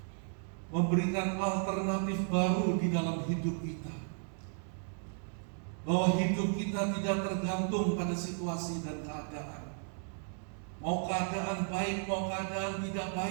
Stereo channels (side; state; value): left; silent; 55 dB below the other